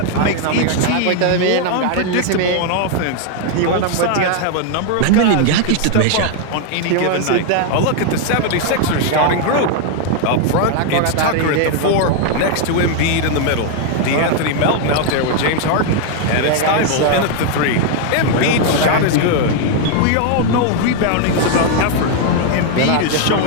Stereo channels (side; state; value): both; different; correlation 0.00